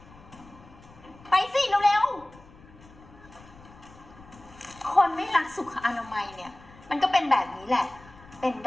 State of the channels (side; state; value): left; noise; rumble, 22 dB below the sound